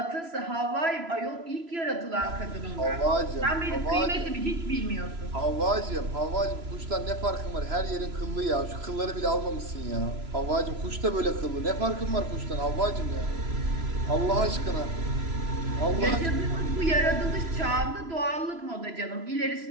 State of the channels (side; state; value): left; late; 3.0 ms